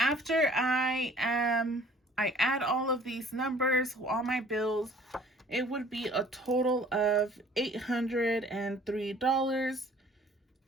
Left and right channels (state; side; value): normal; both; correlation 0.53